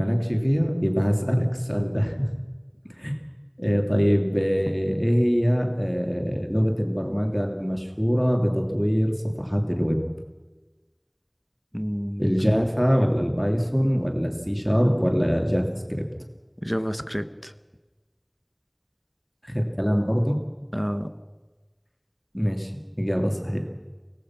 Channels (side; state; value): both; identical; correlation 1.00